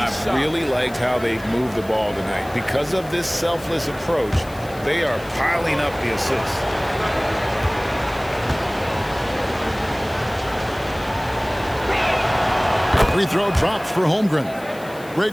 really liked how they moved the ball tonight. Because of this selfless approach, they are piling up the assists. Free throw drops for Holmgren.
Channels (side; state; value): left; noise; hiss, 21 dB below the sound